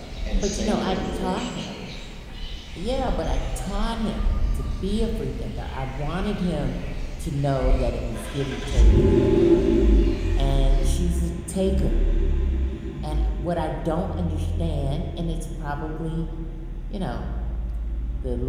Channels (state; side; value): identical; both; correlation 1.00